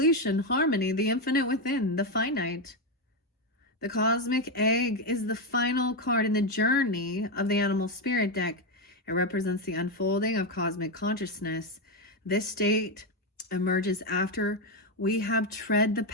harmony, the infinite within, the finite. The cosmic egg is the final card in the journey of the animal spirit deck. It represents the unfolding of cosmic consciousness. This state emerges after we have tread the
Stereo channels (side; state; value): both; normal; correlation 0.07